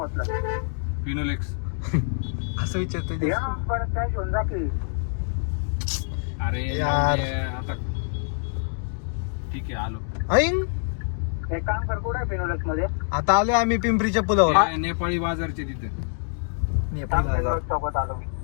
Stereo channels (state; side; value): silent; right; digital silence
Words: फिनोलेक्स असं विचारतोय. अरे यार. आता ठीक आहे आलो. एक काम कर, कुठे फिनोलेक्स मध्ये आता आलोय आम्ही पिंपरीच्या पुलावर. नेपाळी बाजारचे तिथे.